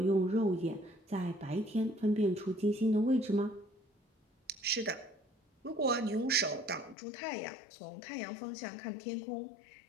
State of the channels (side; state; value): right; drops out; at 7.0 s